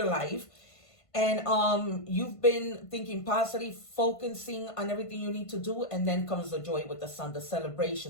life. And you've been thinking positive, focusing on everything you need to do. And then comes the joy with the Sun, the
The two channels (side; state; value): right; late; 1.5 ms